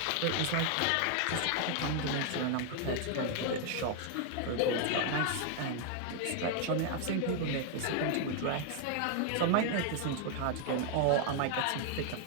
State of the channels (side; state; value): both; different; correlation 0.00